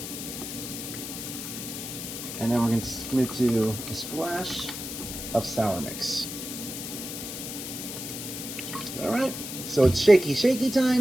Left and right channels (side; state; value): left; noise; hiss, 7 dB below the sound